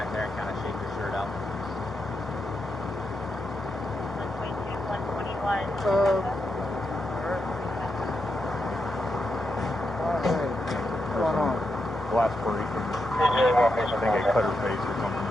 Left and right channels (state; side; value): normal; both; correlation 0.84